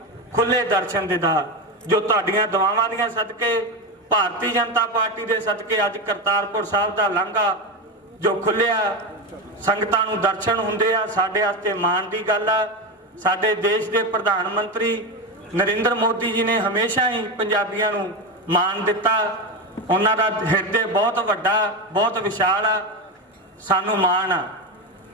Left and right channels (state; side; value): normal; both; correlation 0.16